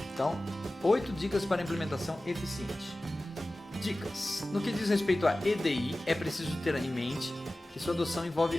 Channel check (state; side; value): normal; both; correlation 0.96